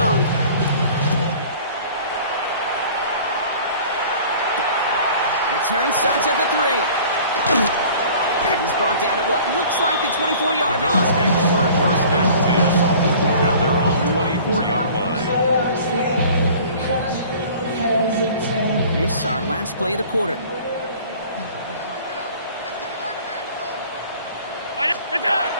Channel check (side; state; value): both; inverted; correlation -0.47